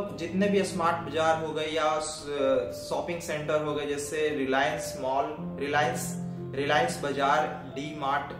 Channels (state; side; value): identical; both; correlation 1.00